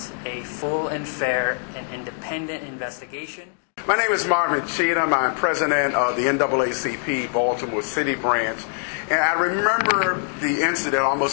a full and fair and independent investigation. My name is Marvin Cheatham. I'm president of the NAACP Baltimore City branch. And I remember the incident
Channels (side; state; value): right; silent; 63 dB below the other